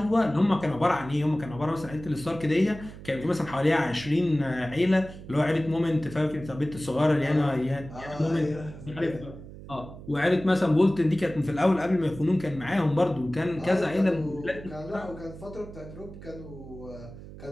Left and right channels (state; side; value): noise; right; hum, 15 dB below the sound